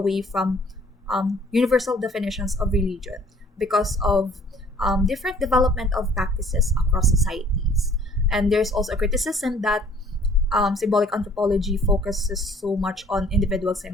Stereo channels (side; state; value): both; normal; correlation 0.56